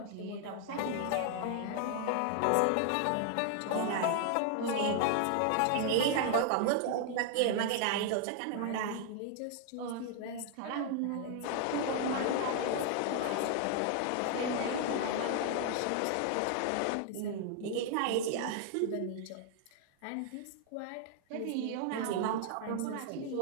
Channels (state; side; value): different; both; correlation 0.00